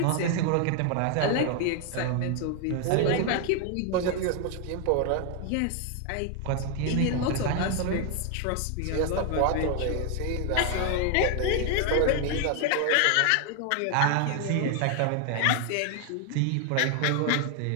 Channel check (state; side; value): different; both; correlation 0.00